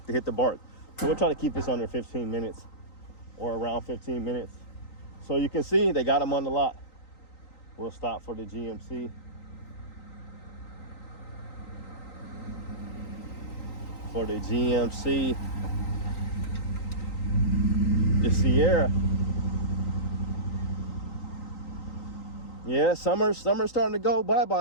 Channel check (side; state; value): right; late; 3.9 ms